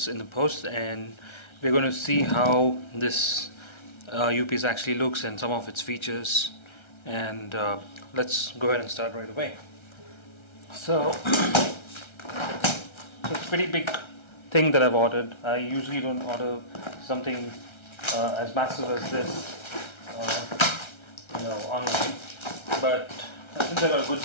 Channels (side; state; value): right; late; 1.3 ms